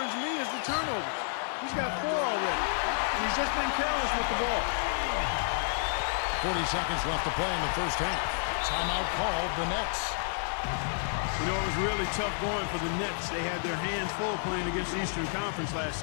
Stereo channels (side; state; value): right; silent; 58 dB below the other